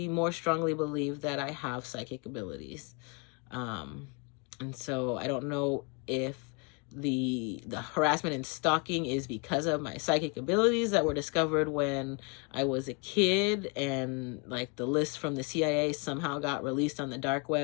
more strongly believe that I have psychic abilities. And so I don't know if the harassment and stalking is because of my psychic abilities that were discovered when I was a kid, and like the list from the CIA somehow got released on the dark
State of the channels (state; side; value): quieter; right; 33.9 dB